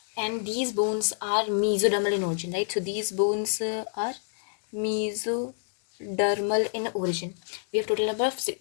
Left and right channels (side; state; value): right; silent; digital silence